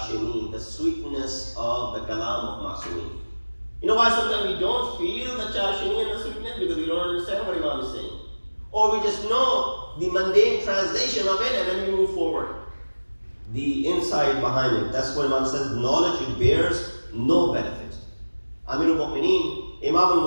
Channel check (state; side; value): inverted; both; correlation -1.00